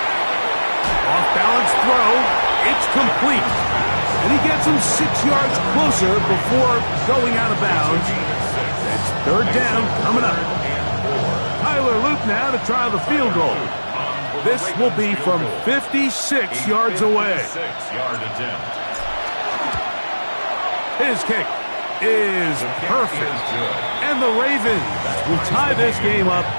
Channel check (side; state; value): both; inverted; correlation -1.00